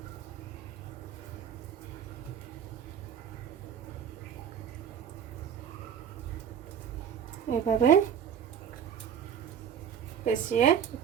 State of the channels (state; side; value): quieter; left; 8.4 dB